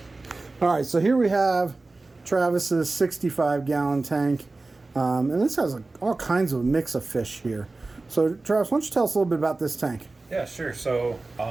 All right, so here we have Travis's 65-gallon tank. And this has all kinds of mix of fish here. So Travis, why don't you tell us a little bit about this tank? Yeah, sure. So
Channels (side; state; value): left; quieter; 3.4 dB